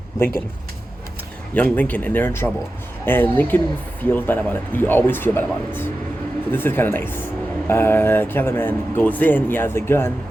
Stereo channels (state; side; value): normal; both; correlation 0.93